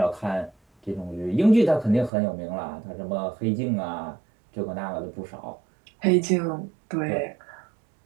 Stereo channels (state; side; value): drops out; left; at 2.1 s